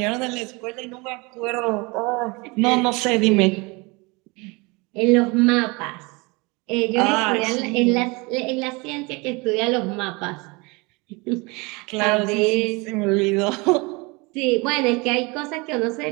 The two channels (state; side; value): quieter; left; 26.7 dB